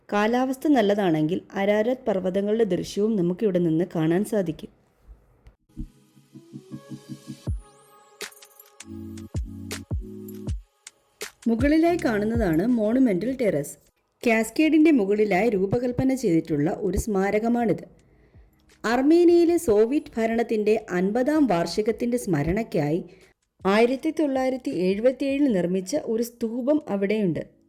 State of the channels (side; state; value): both; identical; correlation 1.00